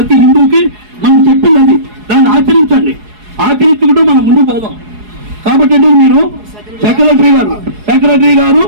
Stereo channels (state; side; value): late; left; 4.8 ms